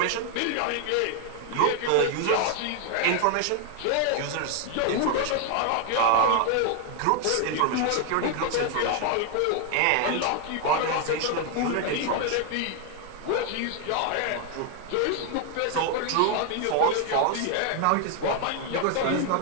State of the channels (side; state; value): both; different; correlation 0.00